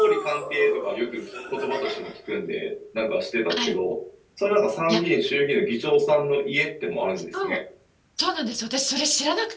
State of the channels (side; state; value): both; identical; correlation 1.00